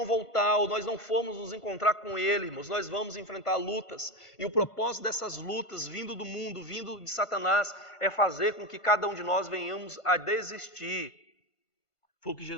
voltar, ou nós não formos nos encontrar com Ele, irmãos, nós vamos enfrentar lutas. E o propósito dessas lutas, vindo do mundo, vindo de Satanás, é fazer com que cada um de nós venhamos a desistir. Foi o que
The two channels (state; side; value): late; right; 1.5 ms